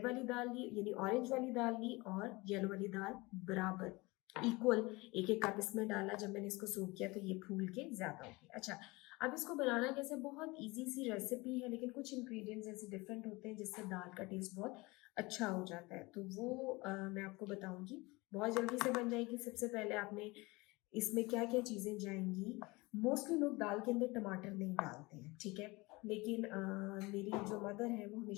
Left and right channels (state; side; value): quieter; right; 23.6 dB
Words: वाली दाल ली, यानी ऑरेंज वाली दाल ली और येलो वाली दाल बराबर इक्वल एक एक कप इसमें डाला। जब मैंने इसको सोक किया तो ये फूल के ज़्यादा हो गया। अच्छा, अब इसको बनाना कैसे, बहुत इजी सी रेसिपी है, लेकिन कुछ इंग्रेडिएंट्स ऐसे डिफरेंट होते हैं जिससे दाल का टेस्ट बहुत अच्छा हो जाता है, तो वो मैं आपको बताऊंगी। बहुत जल्दी से बन जाएगी। सबसे पहले आपने इसमें क्या क्या चीज़ें जाएंगी। मोस्टली लोग दाल के अंदर टमाटर नहीं डालते हैं, ठीक है, लेकिन मेरी जो मदर है वो